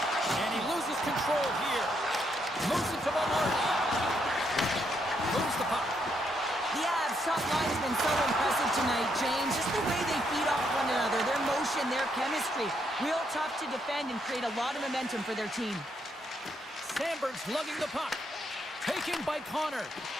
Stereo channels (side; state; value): both; normal; correlation 0.76